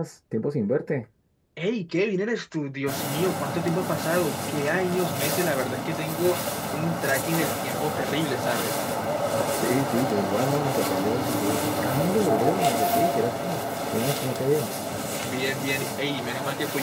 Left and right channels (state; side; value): identical; both; correlation 1.00